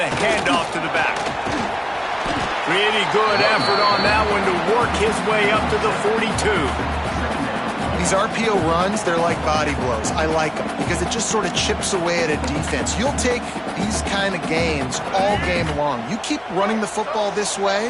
handoff to the back. Pretty good effort on that one to work his way up to the 42. These RPO runs, they're like body blows. I like them because it just sort of chips away at a defense. You'll take these kind of gains all game long. You keep running the football this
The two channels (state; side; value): identical; both; correlation 1.00